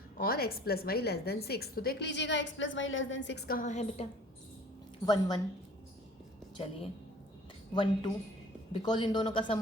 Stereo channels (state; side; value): normal; both; correlation 0.49